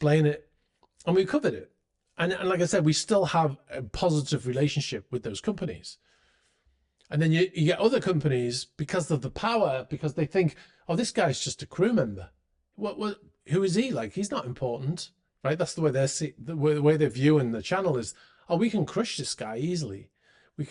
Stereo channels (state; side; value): identical; both; correlation 1.00